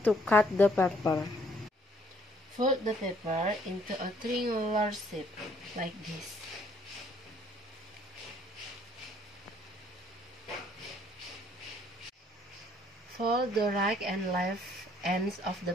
to cut the paper. Fold the paper into a triangular shape like this. Fold the right and left ends of the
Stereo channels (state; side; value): normal; both; correlation 0.63